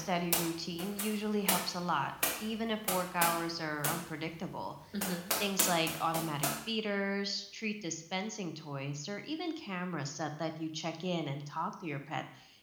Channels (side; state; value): both; identical; correlation 1.00